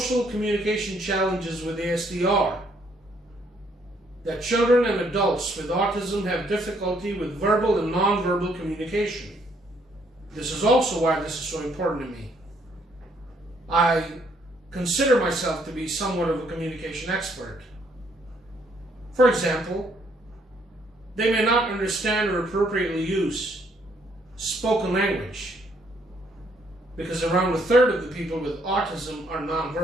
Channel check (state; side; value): normal; both; correlation 0.68